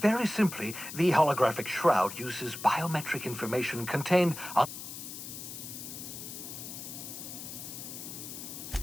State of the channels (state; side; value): noise; left; hiss, 9 dB below the sound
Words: simply, the holographic shroud uses biometric information contained on...